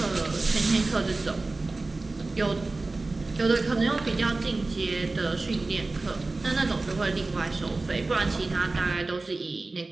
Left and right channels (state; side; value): quieter; left; 3.4 dB